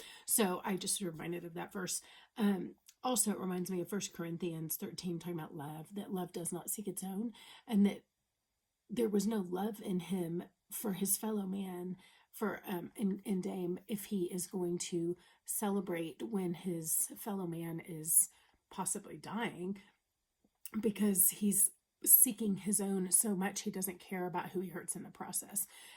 So I just reminded of that verse. Also, it reminds me of 1 Corinthians 13, talking about love, that love does not seek its own, and that there was no love in him for his fellow man, for in Dame, if he is going to celebrate when his fellow man is possibly dying, because he's seeking his own so much he doesn't care about who he hurts in the process.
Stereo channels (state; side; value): identical; both; correlation 1.00